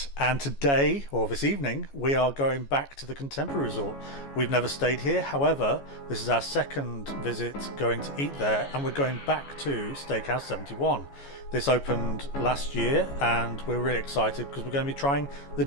and today, or this evening, we are going back to the Contemporary Resort. We've never stayed here, however, this is our second visit going to eat there, and we're going back to Steakhouse 71. This opened last year, and we're really excited because we're going to be trying the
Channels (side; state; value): right; late; 14 ms